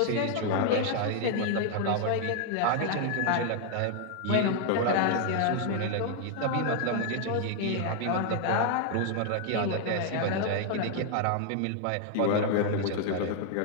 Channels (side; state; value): both; different; correlation 0.00